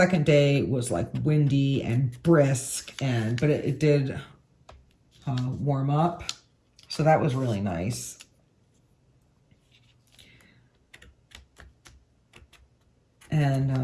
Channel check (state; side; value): identical; both; correlation 1.00